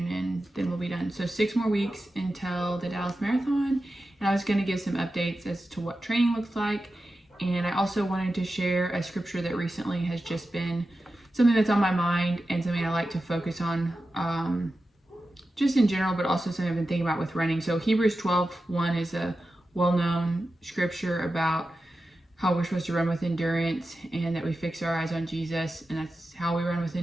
and then we'll be done. So 6 more weeks until the Dallas Marathon, and I was gonna give some updates as to what training looks like, and I also wanted to share a scripture that recently has just been something that's on my mind and something I like to focus on. Just in general, but also something I've been thinking about with running. So Hebrews 12:1 is a well-known scripture about how we're supposed to run with endurance and that we fix our eyes on Jesus, and that's how we run with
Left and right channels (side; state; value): both; normal; correlation 0.92